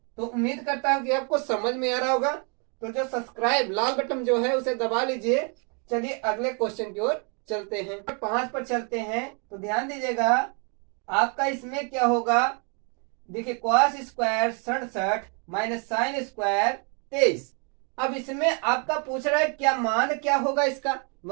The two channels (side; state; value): left; quieter; 36.8 dB